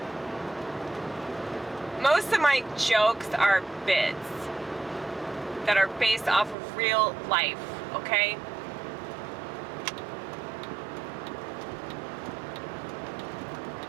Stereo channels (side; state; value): left; drops out; at 6.6 s